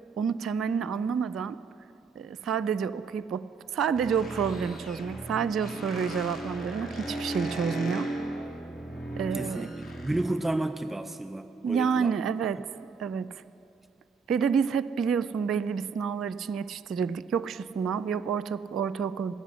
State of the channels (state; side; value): quieter; left; 5.4 dB